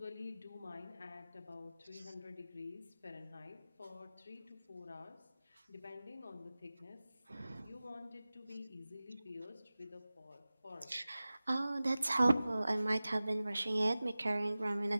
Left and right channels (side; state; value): both; inverted; correlation -0.97